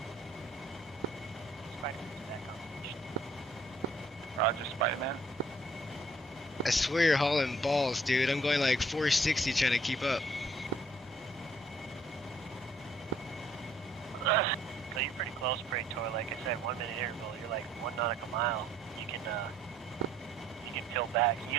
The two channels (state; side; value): normal; both; correlation 0.63